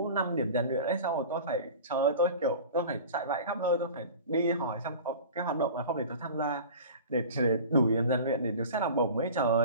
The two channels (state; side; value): inverted; both; correlation -0.38